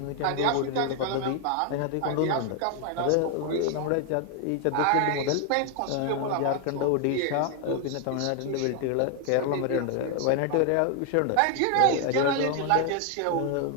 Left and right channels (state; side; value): different; both; correlation 0.00